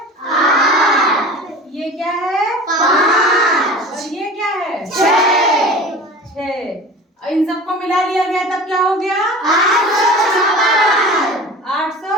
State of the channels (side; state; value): both; normal; correlation 0.37